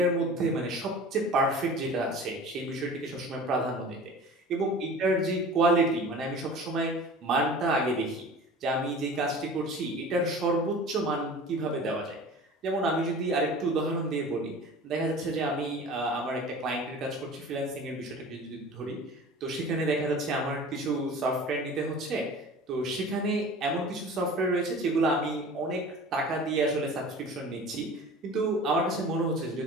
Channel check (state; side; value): normal; both; correlation 0.40